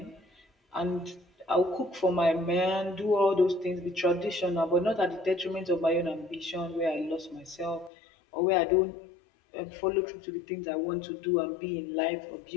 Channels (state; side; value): drops out; right; at 7.9 s